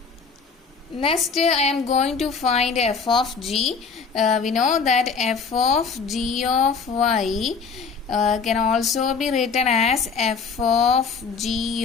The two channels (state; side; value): quieter; right; 5.4 dB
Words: Next, I am going to find f of g. We know that f of g of y can also be written as f of